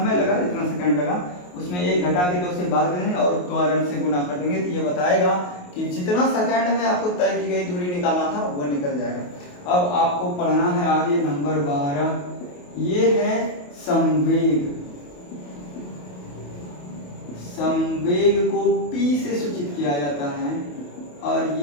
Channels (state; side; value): late; right; 28 ms